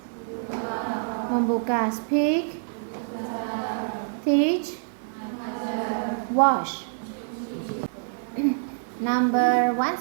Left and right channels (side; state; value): left; silent; digital silence